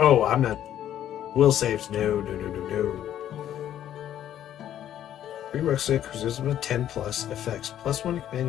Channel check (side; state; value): right; quieter; 11.2 dB